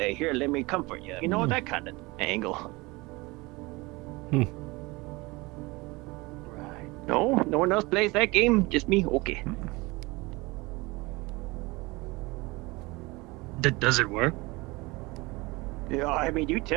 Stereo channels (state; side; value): quieter; left; 23.6 dB